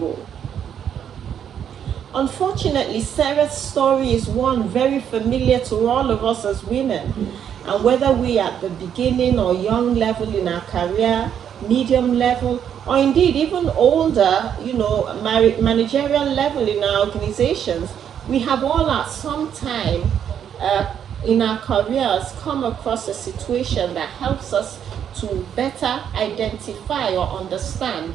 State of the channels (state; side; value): quieter; left; 8.9 dB